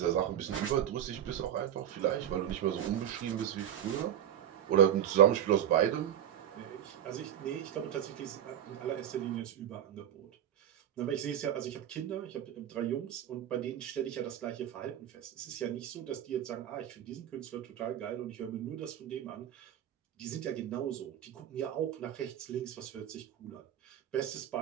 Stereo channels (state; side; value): quieter; left; 10.6 dB